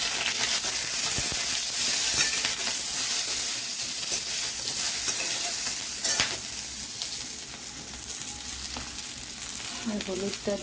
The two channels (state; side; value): identical; both; correlation 1.00